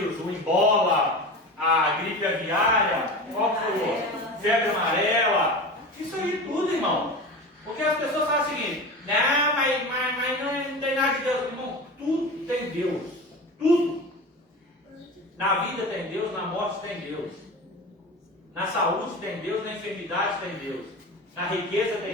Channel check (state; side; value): normal; both; correlation 0.30